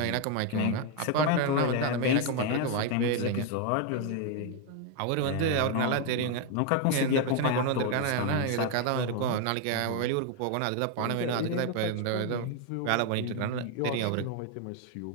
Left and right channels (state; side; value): different; both; correlation 0.01